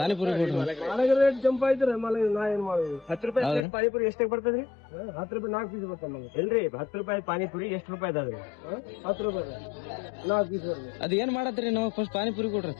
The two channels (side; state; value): right; drops out; at 3.7 s